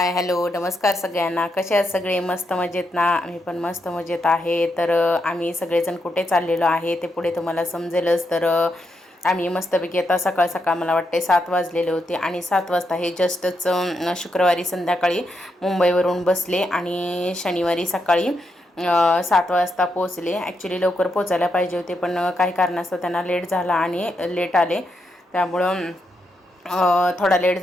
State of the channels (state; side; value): normal; both; correlation 0.82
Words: hello नमस्कार सगळ्यांना. कसे आहात सगळे? मस्त मजेत ना? आम्ही पण मस्त मजेत आहे. तर आम्ही सगळेजण कुठे चाललेलो आहे ते पुढे तुम्हाला समजेलच. तर आम्ही मस्तपैकी आता सकाळ सकाळ मला वाटते 7 वाजलेले होते आणि 7 वाजता हे जस्टच शुक्रवारी संध्याकाळी मुंबईवरून बसले आणि शनिवारी सकाळी 7 वाजता पोचले. ॲक्च्युली लवकर पोचायला पाहिजे होते पण काही कारणास्तव त्यांना लेट झाला आणि लेट आले, त्यामुळं थोडा लेट